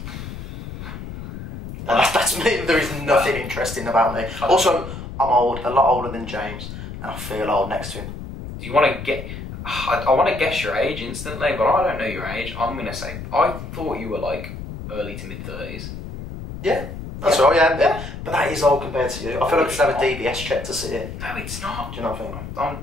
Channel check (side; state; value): left; noise; rumble, 10 dB below the sound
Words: No, that's me. There is nothing interesting about me. Also, I'm old, a lot older than James, and I feel old next to him. Do you want to get... I want to guess your age instantly, but I don't know your age. I'm going to say, I thought you were like early to mid-30s. Yeah, that's right, yeah. But that is old compared to you. I feel like I should have a DBS check to sit here. No, it's not. Do you know what I think? I'm